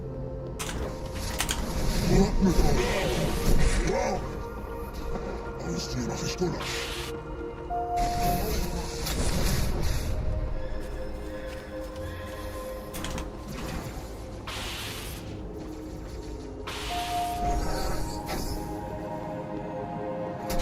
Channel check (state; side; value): identical; both; correlation 1.00